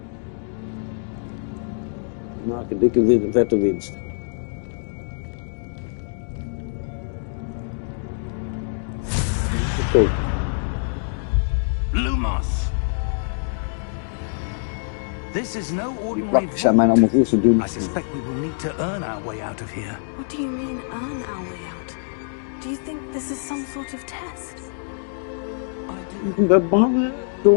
Maak een dikke vette winst. Verkoop. Lumos. This is no Die ordinary plakjes zijn mij vault. allemaal veel te dun. I suspect we will need to earn our way out of here. What do you mean, earn our way out? Do you think this is some sort of test? I do, Ik ben bang, hè?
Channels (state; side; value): silent; right; digital silence